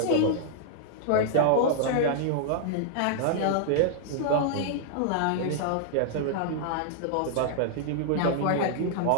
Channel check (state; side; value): different; both; correlation -0.01